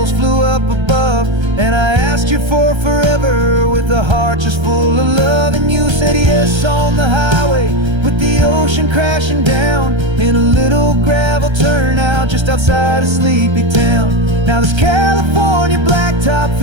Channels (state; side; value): late; left; 1.3 ms